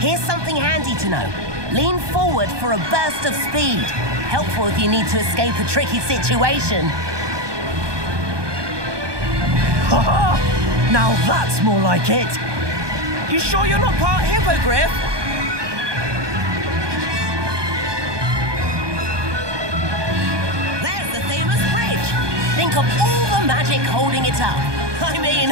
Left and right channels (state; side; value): late; left; 1.2 ms